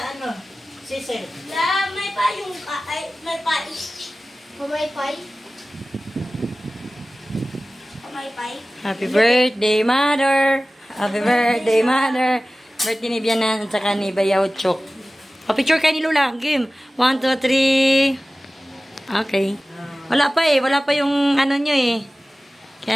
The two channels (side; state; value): both; normal; correlation 0.96